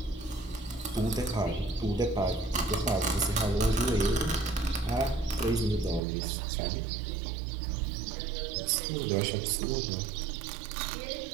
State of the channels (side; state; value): left; drops out; at 6.0 s